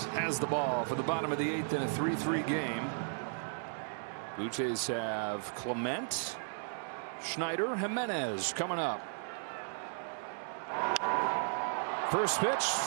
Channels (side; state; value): left; silent; 54 dB below the other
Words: has the ball for the bottom of the 8th in a 3-3 game. Blue Jays have Clement, Schneider, Jimenez coming up. First pitch,